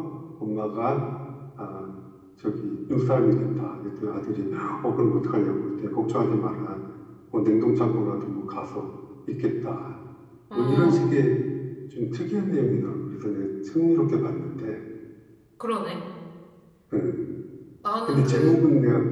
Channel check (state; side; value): identical; both; correlation 1.00